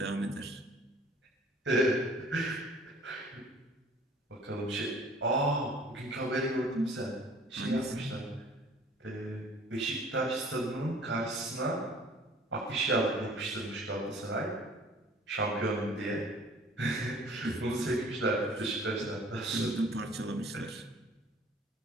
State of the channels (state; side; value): normal; both; correlation 0.51